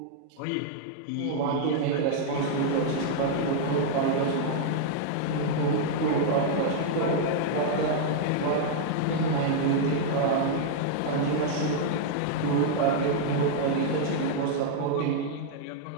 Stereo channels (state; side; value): different; both; correlation -0.01